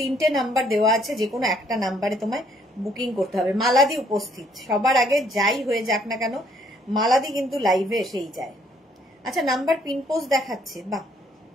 নাম্বার দেওয়া আছে, যে কোনো একটা নাম্বারে তোমায় বুকিং করতে হবে। মালাদি উপস্থিত, সবার আগে যাই হয়ে যাক না কেন মালাদি কিন্তু লাইভে এসেই যায়। আচ্ছা, নাম্বার পিন পোস্ট দেখাচ্ছে, বাহ,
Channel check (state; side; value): normal; both; correlation 0.66